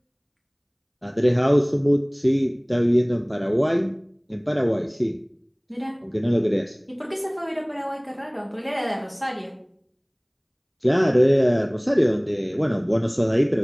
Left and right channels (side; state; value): both; identical; correlation 1.00